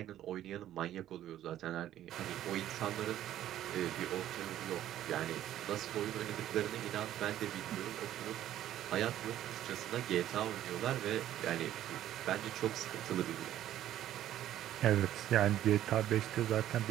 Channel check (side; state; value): left; quieter; 12.3 dB